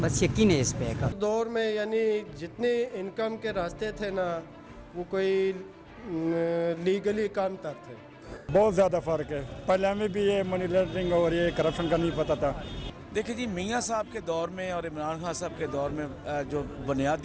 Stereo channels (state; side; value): identical; both; correlation 1.00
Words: बस यकीन है इस पे का दौर में यानी जितने इनकम के रास्ते थे ना वो कोई लीगली काम तर थे। बहुत ज़्यादा फ़र्क है। पहले हमें भी ये मनी लॉन्ड्रिंग और ये करप्शन का नहीं पता था। देखिए जी, मियाँ साहब के दौर में और इमरान खान साहब के दौर में जो